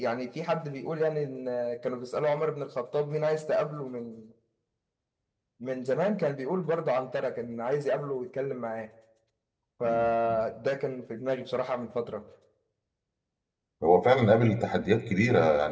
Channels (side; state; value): both; identical; correlation 1.00